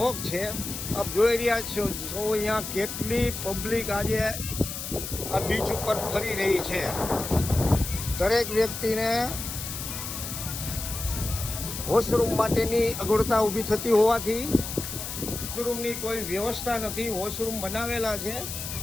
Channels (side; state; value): left; noise; hiss, 7 dB below the sound